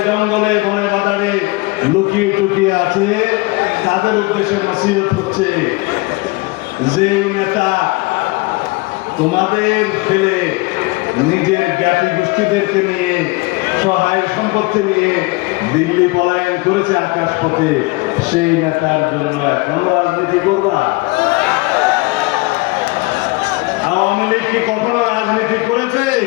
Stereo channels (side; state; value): right; quieter; 24.3 dB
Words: জঙ্গলে বনে বাজারে লুকিয়ে টুকিয়ে আছে, তাদের উদ্দেশ্যে নসিহত হচ্ছে যে নেতা তোমাদের ফেলে নিজের জ্ঞাতি গোষ্ঠীদেরকে নিয়ে সহায় সম্পত্তি নিয়ে দিল্লি পলায়ন করেছে আকাশপথে, সেই নেতার জন্য এখন রাজনীতি করবা? আওয়ামী লীগ কি কখনো রাজনীতি করেছে?